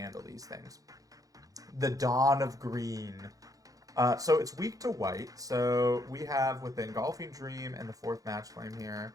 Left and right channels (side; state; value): left; late; 0.17 ms